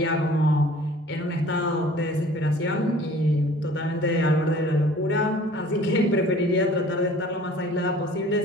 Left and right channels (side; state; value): both; normal; correlation 0.49